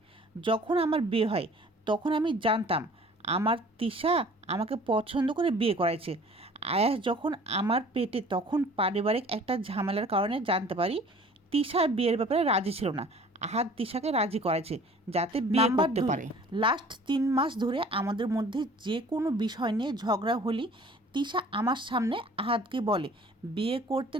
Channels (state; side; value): normal; both; correlation 0.49